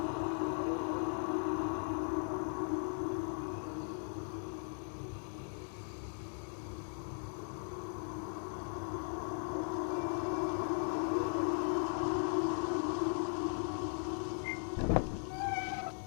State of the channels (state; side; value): silent; right; 52 dB below the other